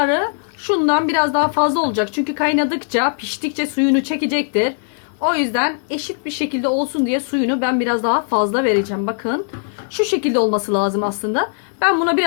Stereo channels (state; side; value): silent; right; digital silence